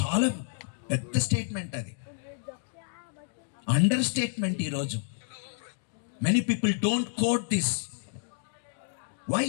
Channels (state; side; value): silent; right; digital silence